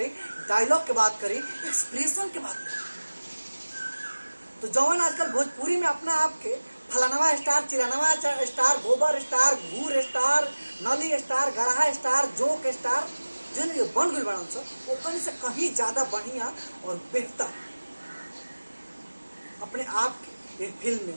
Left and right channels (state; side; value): inverted; both; correlation -1.00